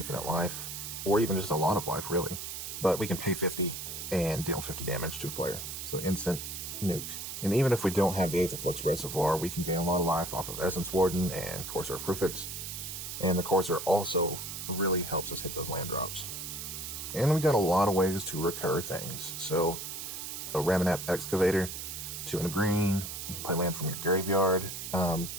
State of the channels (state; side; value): noise; right; hiss, 7 dB below the sound